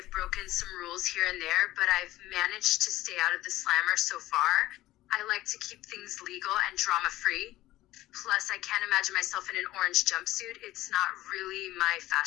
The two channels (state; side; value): quieter; right; 16.2 dB